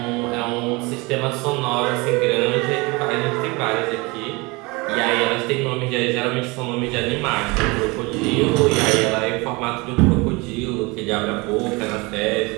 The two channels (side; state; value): left; quieter; 25.5 dB